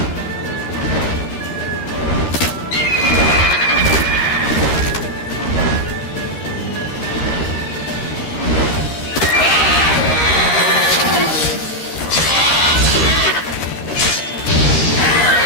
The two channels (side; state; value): right; late; 13 ms